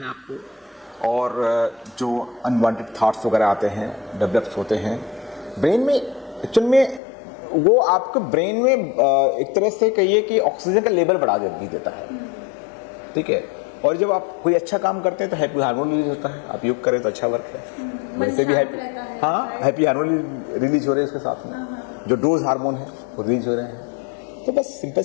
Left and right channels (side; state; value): right; drops out; at 7.0 s